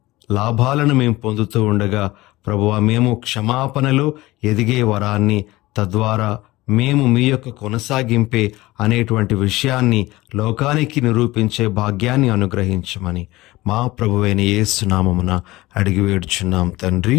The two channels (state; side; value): quieter; right; 19.0 dB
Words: లాభాలను మేము పొందుతూ ఉండగా, ప్రభువా, మేము క్షమాపణలో ఎదిగే వరాన్ని, తద్వారా మేము మీ యొక్క కొనసాగింపే అనేటువంటి విషయాన్ని లోకానికి నిరూపించే భాగ్యాన్ని అనుగ్రహించమని మా ప్రభువైన యేసు నామమున అడిగి వేడుచున్నాం తండ్రి.